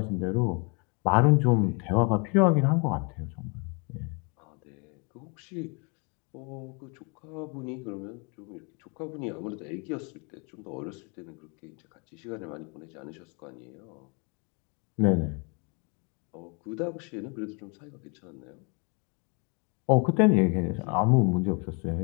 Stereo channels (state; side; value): quieter; right; 33.8 dB